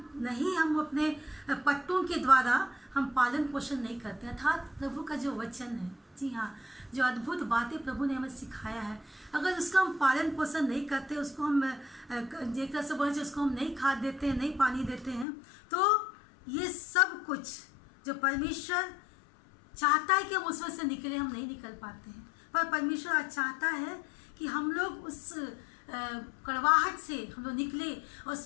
अपने पट्टों के द्वारा हम पालन पोषण नहीं करते, अर्थात प्रभु का जो वचन है, जी हाँ, जो अद्भुत बातें प्रभु ने हमें सिखाया है, अगर उसका हम पालन पोषण नहीं करते, उसको हम एक तरह से बोले उसको हम नहीं खाद देते हैं, नहीं पानी देते हैं, तो ये सब कुछ जो परमेश्वर चाहता है कि हम उसमें से निकले, हम नहीं निकल पाते हैं। पर परमेश्वर आज चाहता है कि हम लोग उस कड़वाहट से हम लोग निकले और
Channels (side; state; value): right; drops out; at 15.2 s